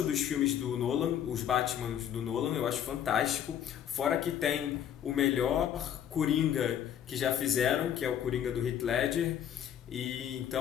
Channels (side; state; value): right; quieter; 9.7 dB